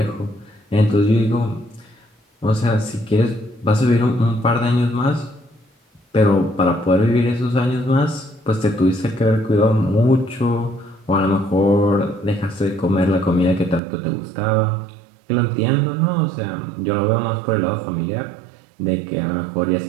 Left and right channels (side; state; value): left; drops out; at 13.8 s